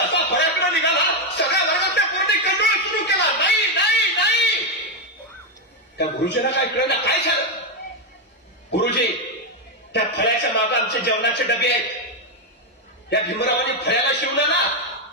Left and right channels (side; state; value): both; normal; correlation 0.04